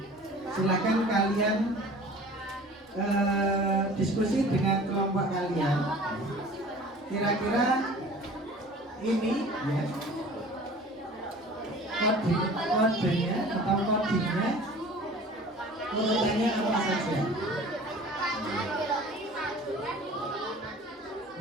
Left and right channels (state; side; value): normal; both; correlation 0.44